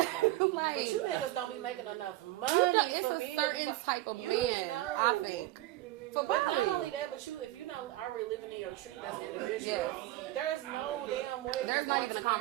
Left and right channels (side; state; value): left; quieter; 16.8 dB